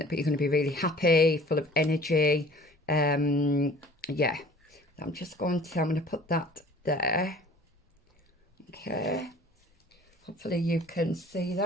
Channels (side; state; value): both; normal; correlation 0.48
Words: going to be really happy, full of energy. Yeah, I'm going to put that there. Okay, hopefully you can see